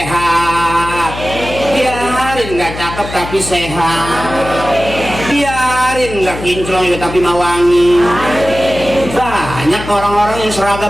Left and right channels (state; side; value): noise; left; hum, 10 dB below the sound